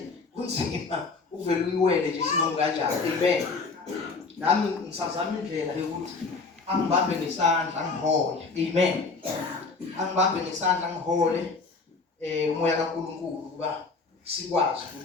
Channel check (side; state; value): right; quieter; 4.2 dB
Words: Kunzima uvela uyiwele nje sinomu kanjani. Amen. Nami ngisazama indlela yokuthi angibambe ngesandla ngihole. Amen. Angibambe ngesandla ngihole umoya kaNkulunkulu kuba sikwazi